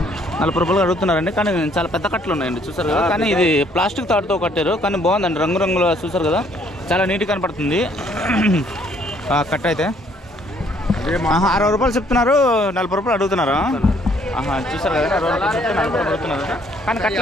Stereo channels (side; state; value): both; normal; correlation 0.64